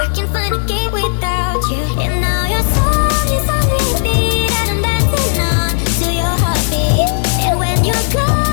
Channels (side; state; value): right; silent; digital silence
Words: can find a gate without you, and now your song is on repeat, and I'm dancing on to your heartbeat. And when you're